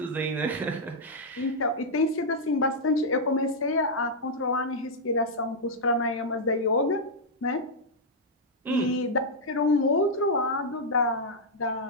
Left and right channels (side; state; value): both; normal; correlation -0.05